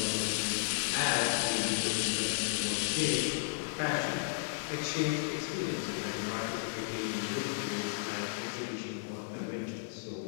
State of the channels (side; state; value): right; silent; digital silence